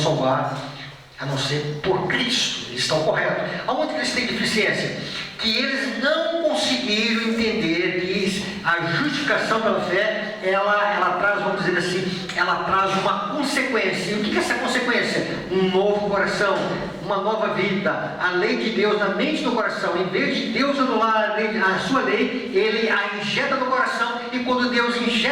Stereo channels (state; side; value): identical; both; correlation 1.00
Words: a não ser por Cristo. Eles estão corretos. Aonde que eles têm deficiência? Que eles não conseguiram entender que a justificação pela fé, ela traz, vamos dizer assim, ela traz uma consequência. E o que é essa consequência? Um novo coração, uma nova vida. A lei de Deus na mente do coração. Em vez de Deus anular a sua lei, Ele a injeta no coração. E quando Deus